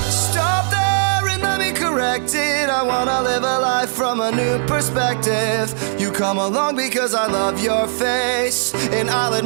I wanna live a life from a new perspective. You come along because I love your face, and I'll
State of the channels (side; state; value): left; silent; digital silence